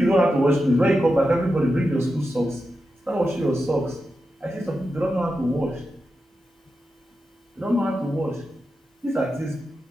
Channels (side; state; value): both; normal; correlation 0.89